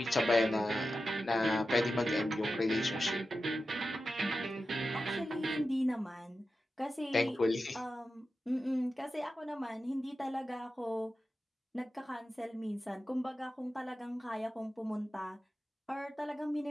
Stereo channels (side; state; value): both; normal; correlation 0.92